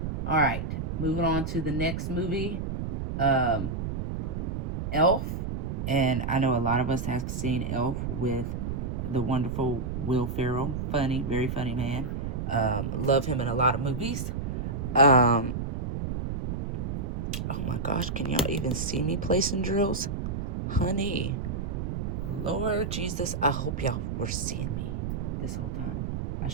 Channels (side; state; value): right; noise; rumble, 3 dB below the sound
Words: All right, moving on to the next movie, Elf. And I know a lot of us have seen Elf with the wonderful Will Ferrell. Funny, very funny man. Love him in a lot of movies. Oh my gosh, can y'all even see me placing drills? Honey, Lord Jesus, I hope y'all were seeing me this whole time. I